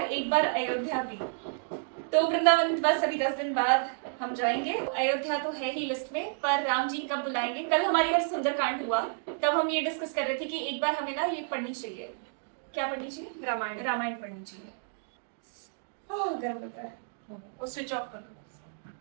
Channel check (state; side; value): silent; left; digital silence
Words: एक बार अयोध्या भी। तो वृंदावन बस अभी 10 दिन बाद हम जाएंगे। अयोध्या तो है ही लिस्ट में, पर राम जी कब बुलाएंगे? कल हमारे घर सुंदरकांड हुआ, तब हम ये डिस्कस कर रहे थे कि एक बार हमें ना ये पढ़नी चाहिए। क्या पढ़नी चाहिए? रामायण। रामायण पढ़नी चाहिए। गर्म लग रहा है, वो स्विच ऑफ कर दो।